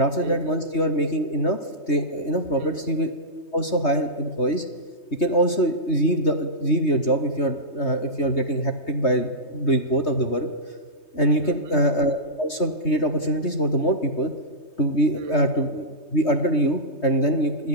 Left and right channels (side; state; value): right; late; 3.2 ms